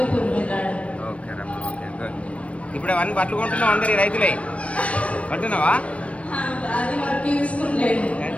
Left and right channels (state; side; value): late; right; 0.063 ms